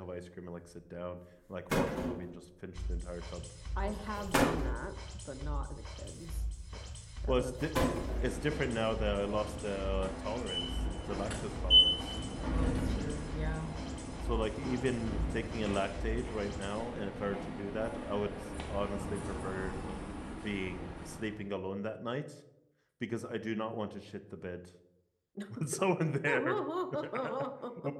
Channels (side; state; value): both; identical; correlation 1.00